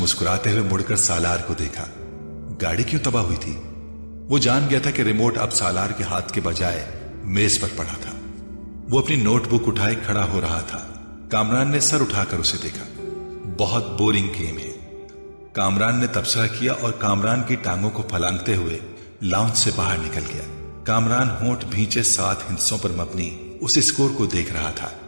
ہوئے مڑ کر سالار کو دیکھا. گاڑی کیوں تباہ ہوئی تھی؟ وہ جان گیا تھا کہ ریموٹ اب سالار کے ہاتھ کے بجائے میز پر پڑا تھا. وہ اپنی نوٹ بک اٹھائے کھڑا ہو رہا تھا. کامران نے سر اٹھا کر اسے دیکھا. بہت بورنگ گیم ہے، کامران نے تبصرہ کیا اور کامران کی ٹانگوں کو پھلانگتے ہوئے لاؤنج سے باہر نکل گیا. کامران ہونٹ بھینچے 7 ہندسوں پر مبنی اس اسکور کو دیکھ رہا تھا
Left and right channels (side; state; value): both; inverted; correlation -1.00